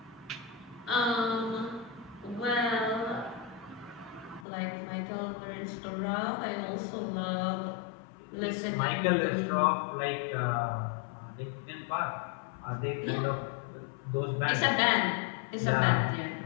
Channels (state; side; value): drops out; right; at 4.5 s